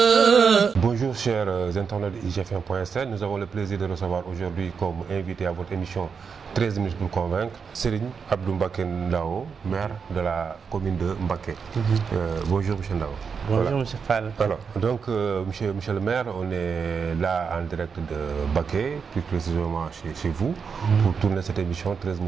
Bonjour chers internautes de IGFM.sn, nous avons le plaisir de recevoir aujourd'hui comme invité à votre émission 13 minutes pour convaincre Serigne Abdou Mbacké Ndao, maire de la commune de Mbacké. Bonjour monsieur Ndao. Bonjour monsieur Fall. Alors, donc monsieur le maire, on est là en direct de Mbacké, plus précisément chez vous, pour tourner cette émission 13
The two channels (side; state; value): left; quieter; 6.0 dB